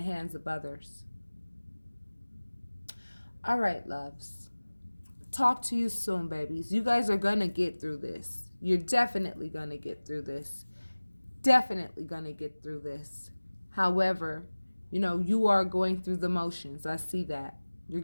hands of others. All right, loves. Talk to you soon, babies. You guys are going to get through this. You're definitely going to get through this. Definitely going to get through this. However, you are going through the motions. I see that. You're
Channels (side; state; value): both; inverted; correlation -1.00